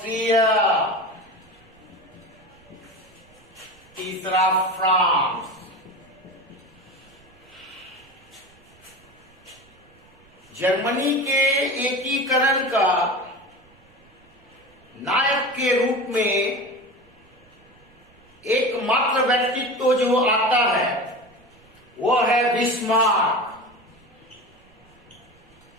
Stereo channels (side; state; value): right; noise; rumble, 29 dB below the sound